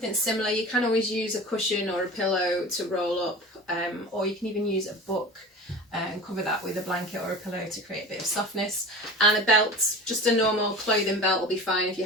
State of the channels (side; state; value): both; normal; correlation 0.35